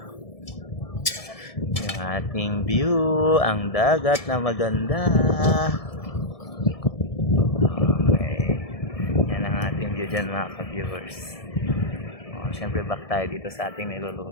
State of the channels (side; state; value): right; late; 1.7 ms